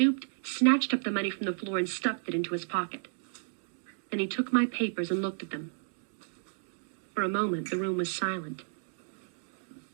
snatched up the money from the floor, and stuffed it into his pocket. Then he took my papers and looked at them. For a moment, the room was silent.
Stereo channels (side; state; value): left; silent; digital silence